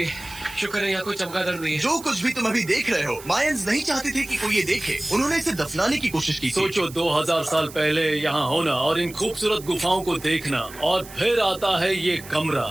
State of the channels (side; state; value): right; noise; hiss, 17 dB below the sound